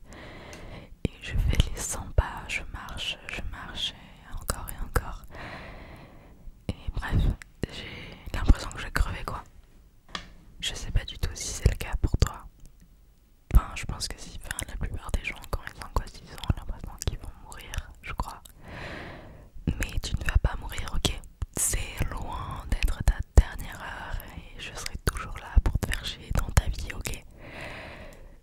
et je fais les 100 pas, je marche et encore. Et bref, j'ai l'impression que je vais crever quoi. Je sais pas du tout si c'est le cas pour toi. Enfin, je pense que si, enfin, la plupart des gens quand ils angoissent, ils ont l'impression qu'ils vont mourir, je crois. Mais tu ne vas pas mourir, ok? C'est loin d'être ta dernière heure et je serai toujours là pour te faire chier dans ta vie, ok?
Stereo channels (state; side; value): identical; both; correlation 1.00